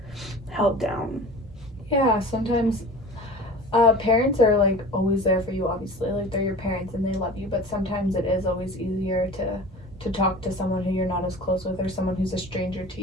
held down. Yeah, sometimes Parents are like always there for you, obviously. Like they're your parents and they love you, but sometimes it is always easier to talk to someone who you're not as close with or someone who's a stranger to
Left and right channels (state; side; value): normal; both; correlation 0.39